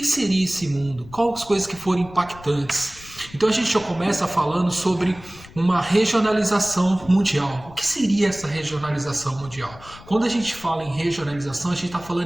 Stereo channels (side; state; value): left; noise; rumble, 20 dB below the sound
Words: seria esse mundo? Quais as coisas que foram impactantes? Então a gente já começa falando sobre uma regionalização mundial. O que seria essa regionalização mundial? Quando a gente fala em regionalização, a gente está